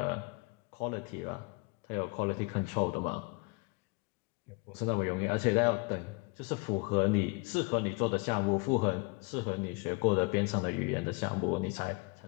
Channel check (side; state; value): right; quieter; 29.5 dB